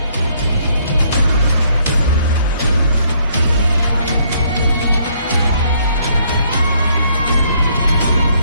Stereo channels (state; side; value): inverted; both; correlation -0.67